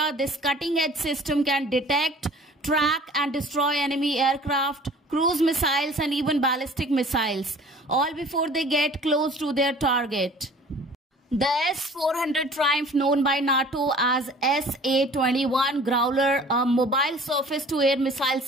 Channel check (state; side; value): normal; both; correlation 0.48